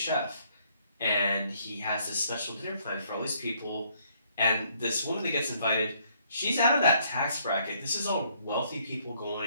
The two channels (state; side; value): inverted; both; correlation -0.67